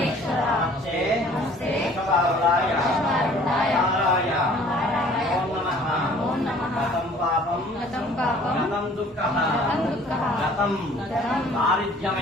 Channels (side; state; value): both; normal; correlation 0.53